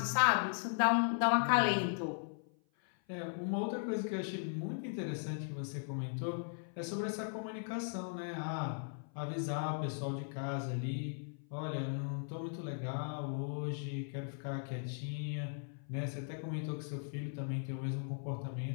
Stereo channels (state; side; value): silent; right; 52 dB below the other